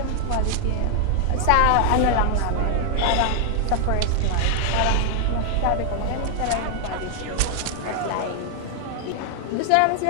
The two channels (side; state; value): both; different; correlation 0.00